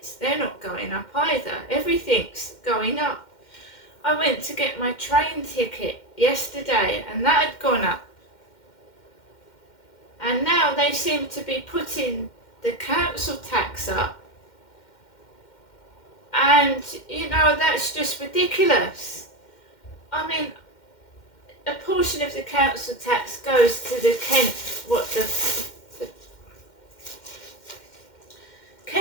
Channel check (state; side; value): late; right; 2.1 ms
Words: They're not going up either. Everything's going up. I went to get my train ticket yesterday and that had gone up. And now they seem to be putting the council tax up. And, that's just ridiculous. I mean, a portion of the council tax goes to the Kent